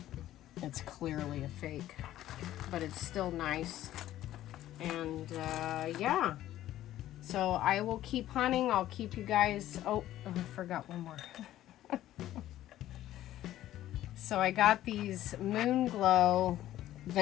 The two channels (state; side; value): quieter; right; 13.5 dB